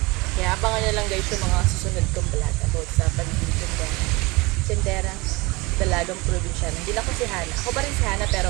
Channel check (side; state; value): left; quieter; 23.6 dB